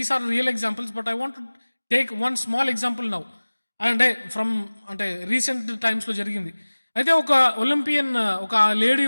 are real examples, but I want to take one small example now. అంటే recent టైమ్స్లో జరిగింది. అయితే ఒక ఒలింపియన్, ఒక లేడీ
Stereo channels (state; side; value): inverted; both; correlation -1.00